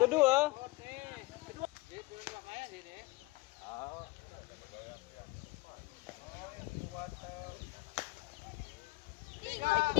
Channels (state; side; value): quieter; right; 22.7 dB